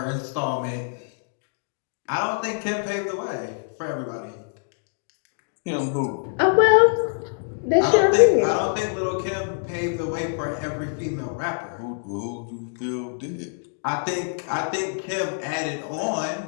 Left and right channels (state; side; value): silent; right; digital silence